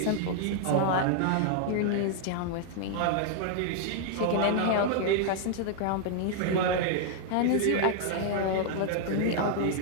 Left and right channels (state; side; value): different; both; correlation 0.00